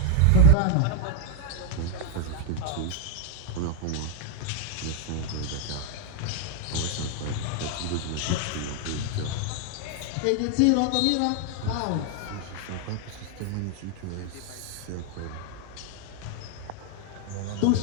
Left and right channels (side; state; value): both; different; correlation 0.00